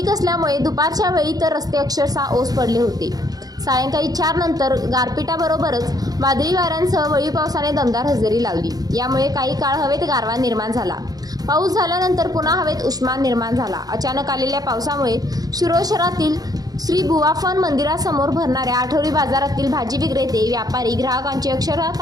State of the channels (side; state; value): left; late; 0.18 ms